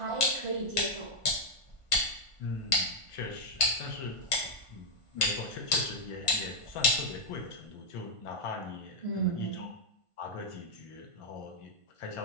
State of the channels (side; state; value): right; late; 1.5 ms